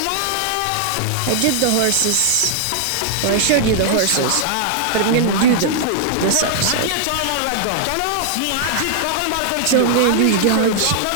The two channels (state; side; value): different; both; correlation -0.01